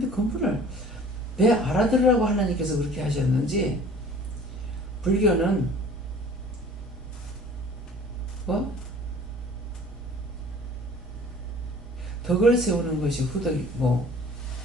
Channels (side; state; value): both; normal; correlation 0.49